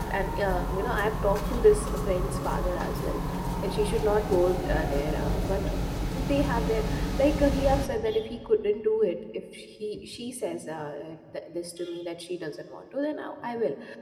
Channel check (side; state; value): both; identical; correlation 1.00